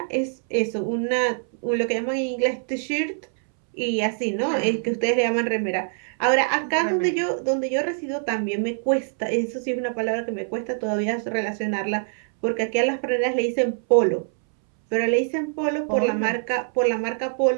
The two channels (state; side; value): silent; left; 63 dB below the other